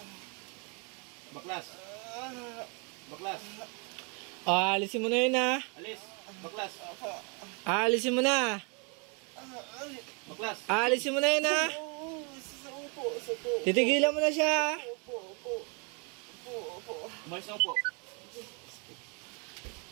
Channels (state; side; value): quieter; left; 34.6 dB